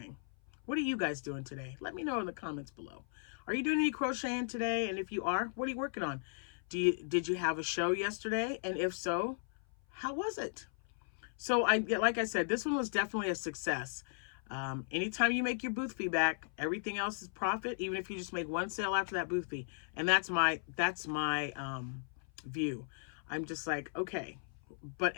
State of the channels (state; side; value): silent; right; 53 dB below the other